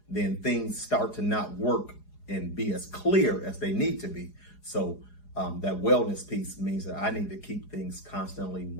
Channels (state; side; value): late; right; 4.8 ms